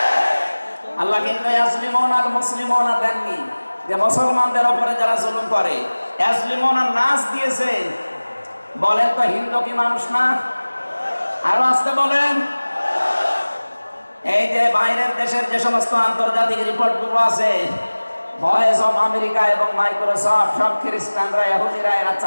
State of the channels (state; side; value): inverted; both; correlation -1.00